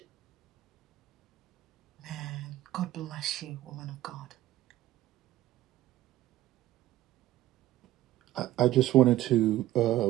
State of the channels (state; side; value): quieter; left; 14.8 dB